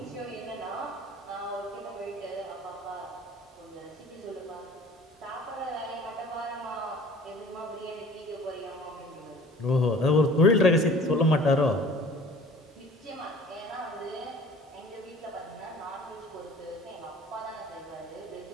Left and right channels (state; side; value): normal; both; correlation 0.47